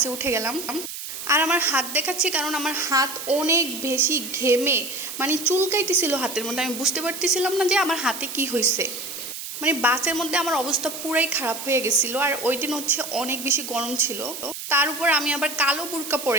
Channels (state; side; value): noise; right; hiss, 8 dB below the sound